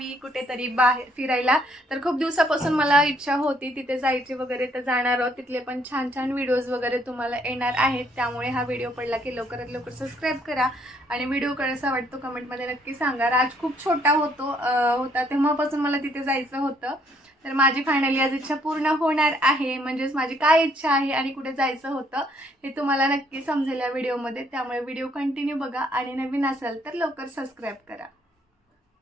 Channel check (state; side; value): normal; both; correlation 0.67